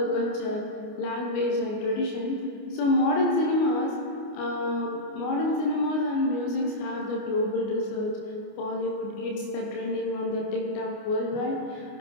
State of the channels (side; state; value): right; late; 29 ms